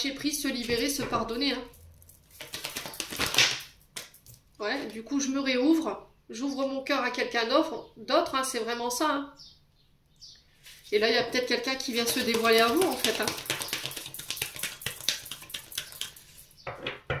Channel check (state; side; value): identical; both; correlation 1.00